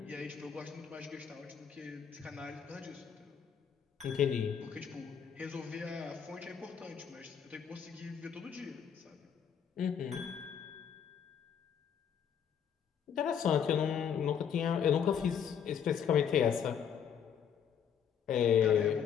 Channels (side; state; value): right; quieter; 8.0 dB